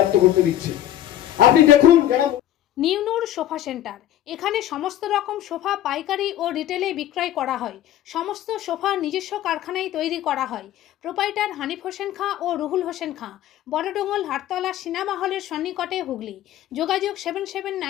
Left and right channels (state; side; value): quieter; right; 12.4 dB